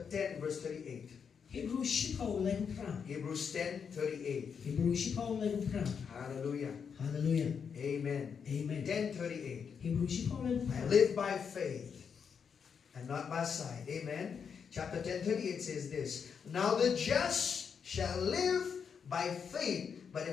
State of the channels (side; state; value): right; quieter; 6.7 dB